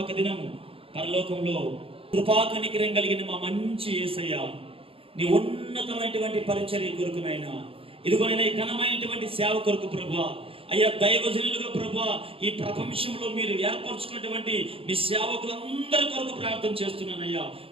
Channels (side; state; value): left; late; 0.27 ms